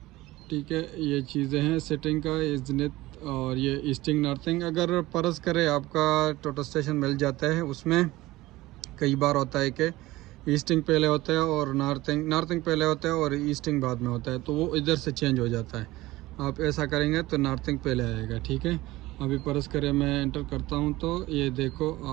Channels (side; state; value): left; quieter; 18.4 dB